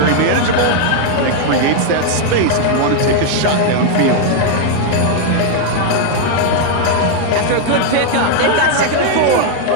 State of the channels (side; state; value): both; different; correlation 0.00